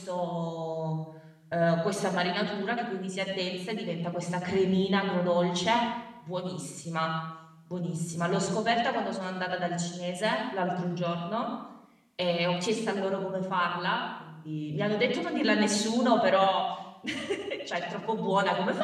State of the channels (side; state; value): both; identical; correlation 1.00